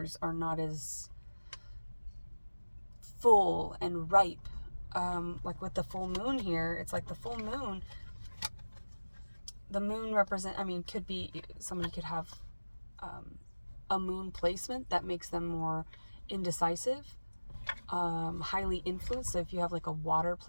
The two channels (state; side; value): inverted; both; correlation -1.00